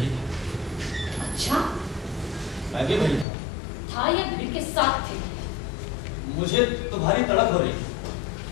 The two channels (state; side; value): drops out; right; at 3.2 s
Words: था। अच्छा, मैं भी वही था या भीड़ के साथ थे? मुझे तुम्हारी तड़प हो रही है।